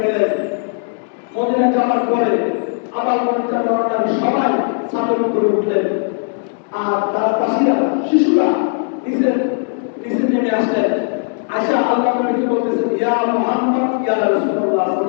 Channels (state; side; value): silent; right; 59 dB below the other